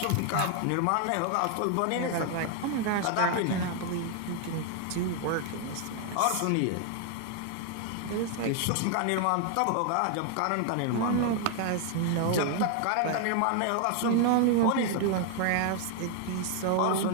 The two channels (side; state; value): both; different; correlation 0.00